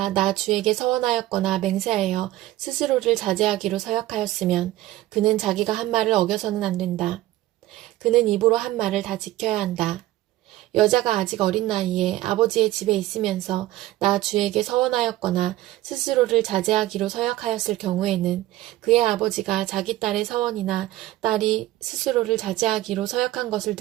나 주에게 서원하였거나 맹세하여 스스로를 자제하기로 서약하였으면 그는 자기가 한 말을 어겨서는 안 된다. 그는 입으로 한 말을 다 지켜야 한다. 여자가 아직 어린 나이에 아버지의 집에 있으면서 나 주에게 서원하였거나 스스로를 자제하기로 서약하였을 경우에는 그의 아버지가 자기 딸의 서원이나 딸이 스스로를 자제하기로 서약한 것을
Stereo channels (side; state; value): left; quieter; 15.8 dB